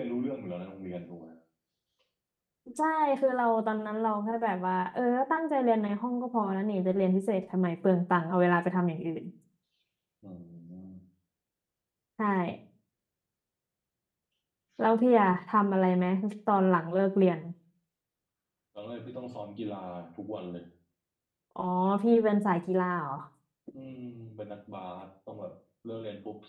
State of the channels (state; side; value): identical; both; correlation 1.00